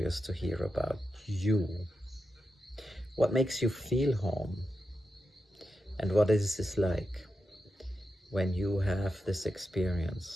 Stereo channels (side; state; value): both; normal; correlation 0.88